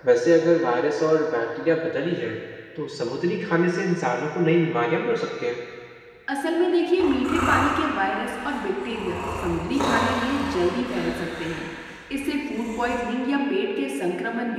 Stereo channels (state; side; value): identical; both; correlation 1.00